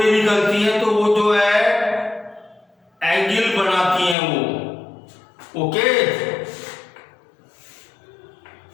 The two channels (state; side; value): drops out; right; at 4.2 s